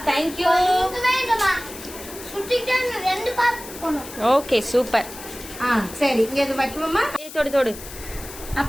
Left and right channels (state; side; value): noise; left; hiss, 14 dB below the sound